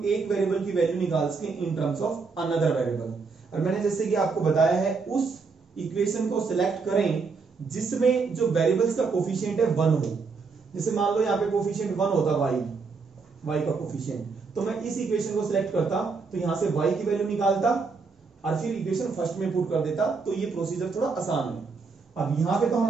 एक वेरिएबल की वैल्यू निकाल सके इन टर्म्स ऑफ अनदर वेरिएबल। और मैंने जैसे कि आपको बताया है उस इक्वेशन को सिलेक्ट करें जिसमें जो वेरिएबल्स का कोफिशिएंट है 1 हो। जैसे मान लो यहाँ पे कोफिशिएंट 1 होता y का कोफिशिएंट, तो मैं इस इक्वेशन को सिलेक्ट करता तो यहां से y की वैल्यू निकालता और फिर इक्वेशन फर्स्ट में पुट कर देता, तो ये प्रोसीजर थोड़ा आसान है। अब यहां पे तो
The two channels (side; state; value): left; quieter; 4.7 dB